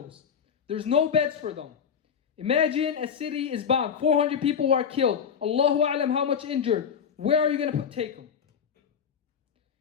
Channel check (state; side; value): quieter; right; 7.3 dB